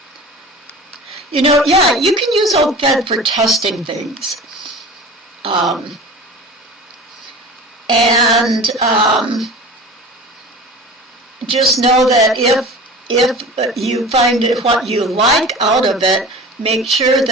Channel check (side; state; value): both; normal; correlation 0.37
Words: You know, yeah, you can use old thread for testing things. Just know that if you find what you like out of it, make sure